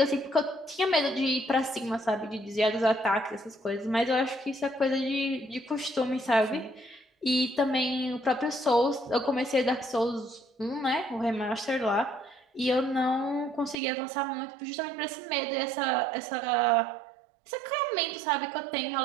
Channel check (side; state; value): left; drops out; at 13.8 s